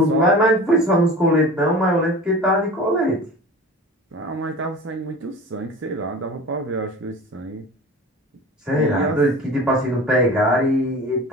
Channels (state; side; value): normal; both; correlation 0.37